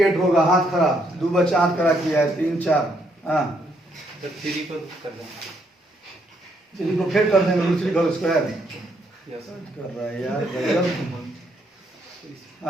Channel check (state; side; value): normal; both; correlation 0.73